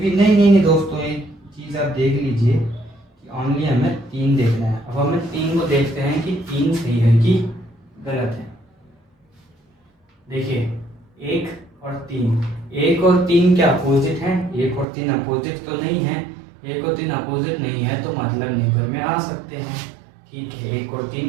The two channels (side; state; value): left; drops out; at 14.9 s